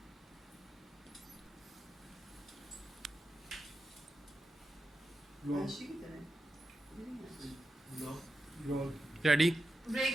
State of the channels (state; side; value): normal; both; correlation 0.89